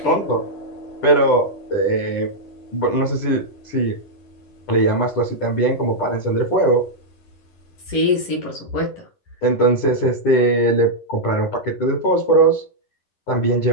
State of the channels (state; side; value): late; right; 11 ms